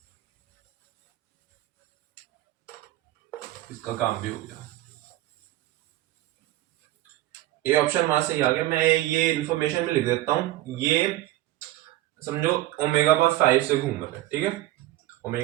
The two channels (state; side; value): quieter; left; 15.8 dB